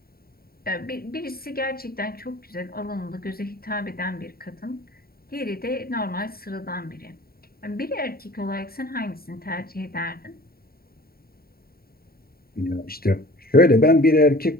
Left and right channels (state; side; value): late; right; 0.44 ms